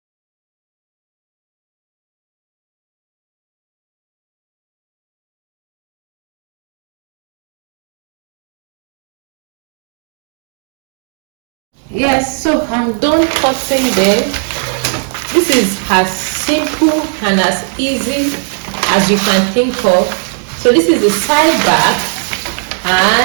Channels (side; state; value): left; silent; 62 dB below the other